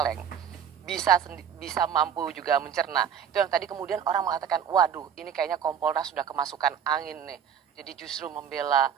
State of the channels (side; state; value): left; quieter; 8.2 dB